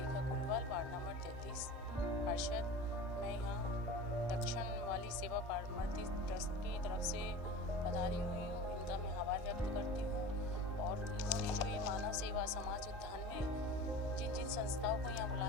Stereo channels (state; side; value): normal; both; correlation 0.35